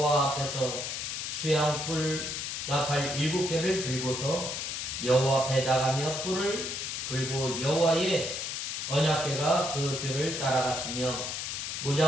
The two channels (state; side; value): noise; left; hiss, 4 dB below the sound